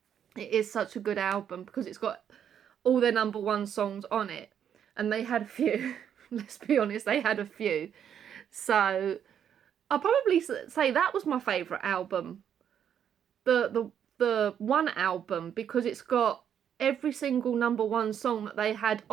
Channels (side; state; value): left; quieter; 8.9 dB